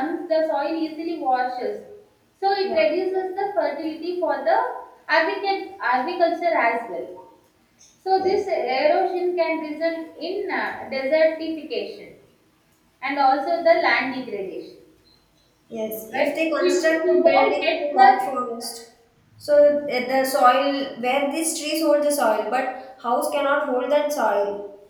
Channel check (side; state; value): both; identical; correlation 1.00